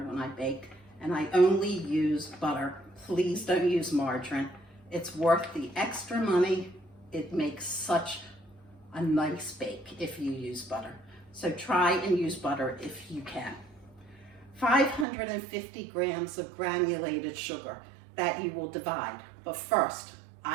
I bake, and I only use butter. Please don't use margarine. It's worth the extra money. It makes such a nice bake if you use butter. So try and use butter if you can. 550 grams of granulated sugar that you will divide. But first,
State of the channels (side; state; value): left; drops out; at 15.1 s